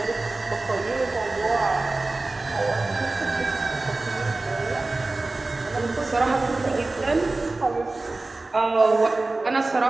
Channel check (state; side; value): quieter; left; 3.2 dB